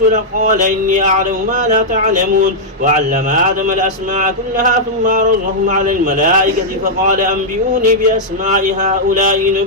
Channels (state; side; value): normal; both; correlation -0.06